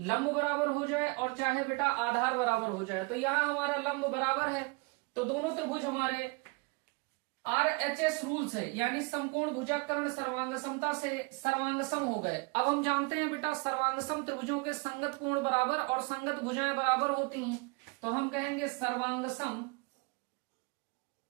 बराबर हो जाए और चाहे बेटा आधार बराबर हो जाए। तो यहां हमारा लंब बराबर है, तो दोनों त्रिभुज हमारे RHS रूल्स है, यानी समकोण भुजाकर्ण सर्वांग समता से सर्वांग सम हो गए। अब हम जानते हैं बेटा सर्वांग सम त्रिभुजों के संगत कोण बराबर और संगत भुजाएं बराबर होती हैं। तो हम कहेंगे सर्वांग सम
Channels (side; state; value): left; quieter; 29.6 dB